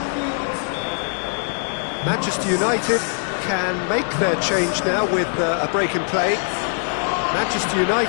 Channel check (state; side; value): silent; right; 64 dB below the other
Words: Manchester United can make their change now with a break in play. Manchester